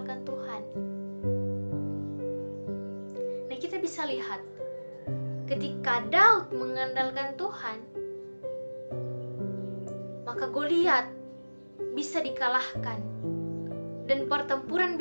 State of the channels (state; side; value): inverted; both; correlation -1.00